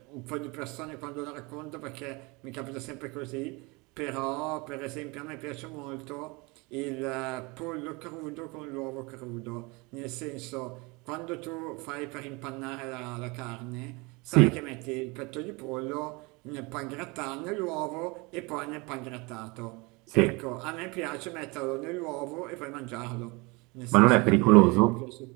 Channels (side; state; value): left; quieter; 26.6 dB